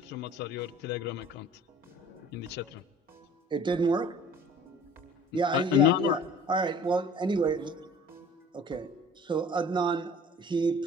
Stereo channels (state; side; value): normal; both; correlation 0.47